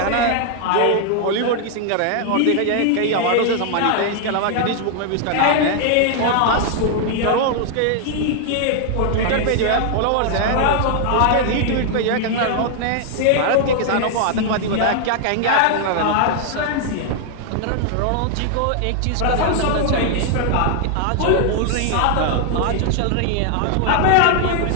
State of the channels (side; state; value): both; different; correlation 0.00